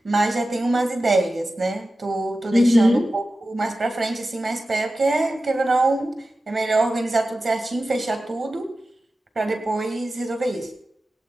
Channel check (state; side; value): normal; both; correlation 0.94